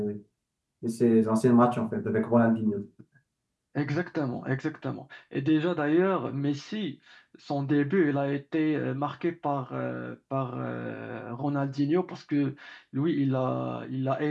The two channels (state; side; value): identical; both; correlation 1.00